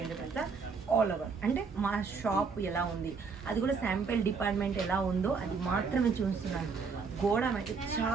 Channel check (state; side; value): quieter; left; 5.1 dB